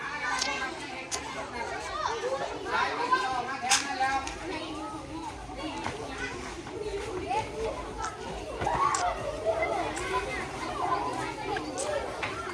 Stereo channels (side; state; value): both; identical; correlation 1.00